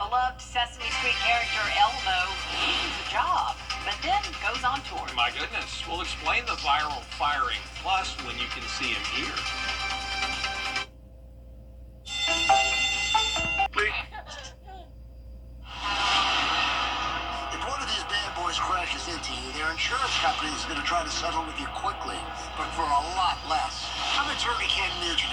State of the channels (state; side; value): identical; both; correlation 1.00